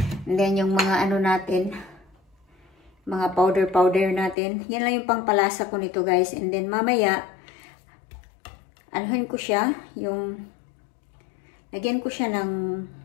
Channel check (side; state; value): right; drops out; at 4.4 s